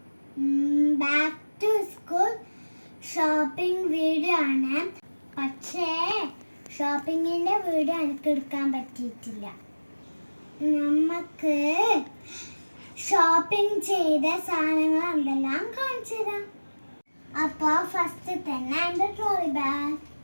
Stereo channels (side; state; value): both; inverted; correlation -1.00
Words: Back to school shopping video ആണ്. പക്ഷേ ഷോപ്പിങ്ങിൻ്റെ വീഡിയോ എനിക്ക് എടുക്കാൻ പറ്റിയിട്ടില്ല. നമുക്ക് ഷോപ്പിംഗ് ചെയ്ത സാധനങ്ങൾ എന്തെല്ലാം കാണിച്ചു തരാം. അപ്പോൾ ഫസ്റ്റ് തന്നെ എൻ്റെ ട്രോളി ബാഗ്